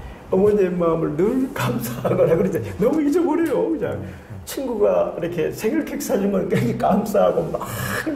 어머니의 마음을 늘 감사하거나 그러지 너무 잊어버려요. 그냥 친구가 이렇게 생일 케이크 사준 건 굉장히 감사하고 막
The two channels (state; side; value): identical; both; correlation 1.00